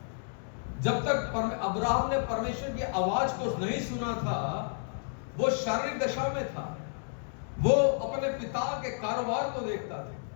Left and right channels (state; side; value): silent; right; 57 dB below the other